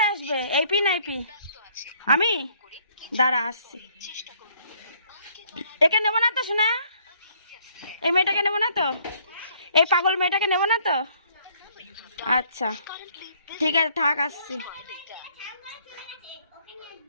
আসবে? এই পি নাই পি? আমি দাঁড়া আসছি। একে নেবো না তো শোনা? এই মেয়েটাকে নেবো না তো? এই পাগল মেয়েটাকে নেবো না তো? আচ্ছা ঠিক আছে, থাক, আসছি।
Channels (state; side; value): inverted; both; correlation -0.63